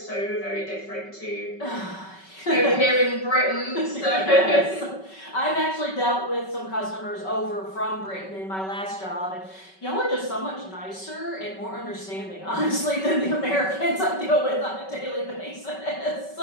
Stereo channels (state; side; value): late; right; 5.3 ms